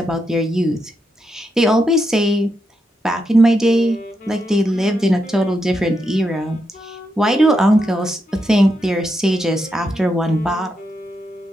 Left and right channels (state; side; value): normal; both; correlation 0.83